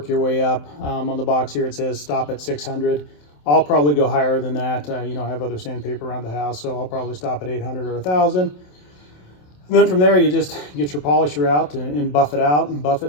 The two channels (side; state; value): right; late; 27 ms